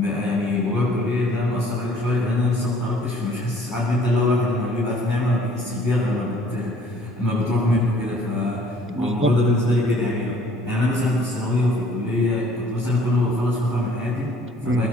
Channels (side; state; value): both; normal; correlation 0.57